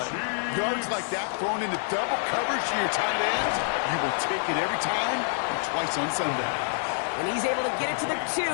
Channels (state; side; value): silent; right; 60 dB below the other